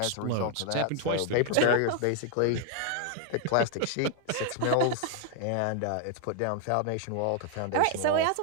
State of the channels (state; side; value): different; both; correlation 0.00